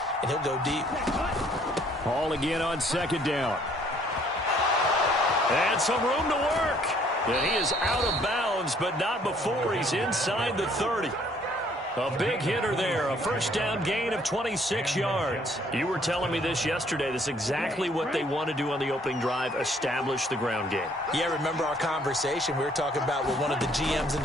and he'll go deep. Ball again on second down. And some room to work. And he is out of bounds, but not before he's inside the 30. A big hitter there, a first down gain of 26 yards. You were telling me this yesterday. This is exactly what they want to do on the opening drive, establish the ground game. Yeah, remember our conversation we were talking about with one of the GMs in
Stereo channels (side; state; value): both; normal; correlation 0.62